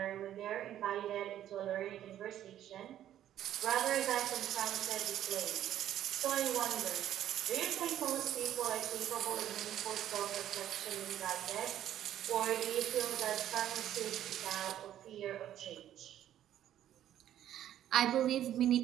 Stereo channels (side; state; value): left; quieter; 11.6 dB